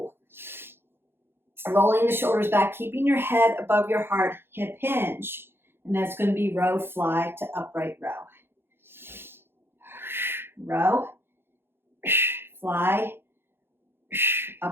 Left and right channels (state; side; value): late; left; 0.11 ms